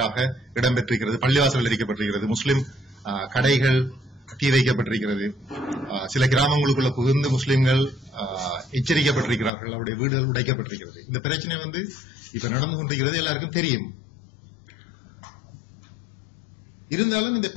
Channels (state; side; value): drops out; right; at 9.5 s